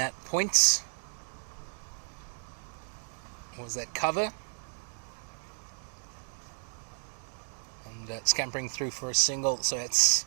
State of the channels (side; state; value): left; silent; 56 dB below the other